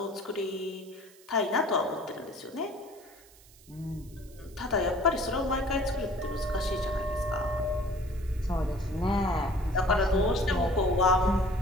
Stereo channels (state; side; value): noise; right; hiss, 25 dB below the sound